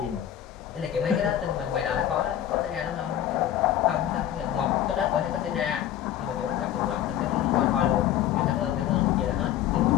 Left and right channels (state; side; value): quieter; right; 11.3 dB